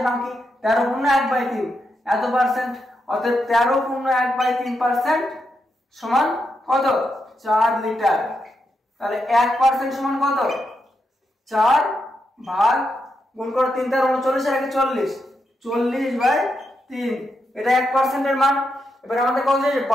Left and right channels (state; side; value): normal; both; correlation 0.84